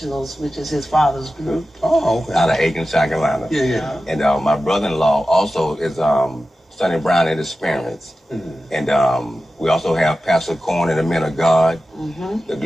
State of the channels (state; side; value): normal; both; correlation 0.94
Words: which is his father's group. Oh, okay. Out of Aiken, South Carolina. Yeah. And my brother-in-law also is Sonny Brown and his parents. And we also have Pastor Corn and the Men of God, the